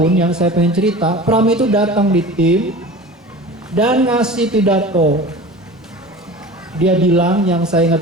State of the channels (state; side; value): normal; both; correlation 0.37